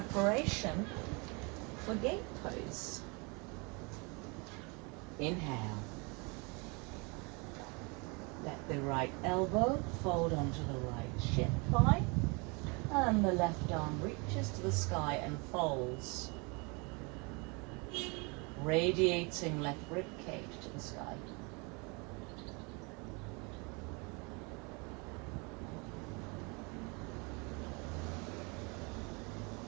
for gate pose. Inhale. Let the right elbow fold onto the right shin thigh, and the left arm reaches to the sky and folds, radiating left rib cage to the sky.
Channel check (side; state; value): left; quieter; 30.2 dB